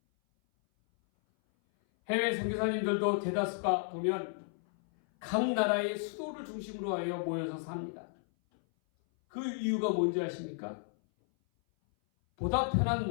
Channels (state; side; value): silent; right; 56 dB below the other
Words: 해외 선교사님들도 대다수가 보면 각 나라의 수도를 중심으로 하여 모여서 삽니다. 그 이유가 뭔지 아십니까? 보다 편한